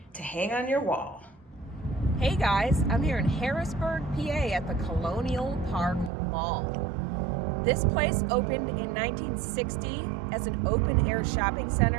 to hang on your wall. Hey guys, I'm here in Harrisburg, PA at the Colonial Park Mall. This place opened in 1960 as an open-air shopping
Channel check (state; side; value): drops out; left; at 6.1 s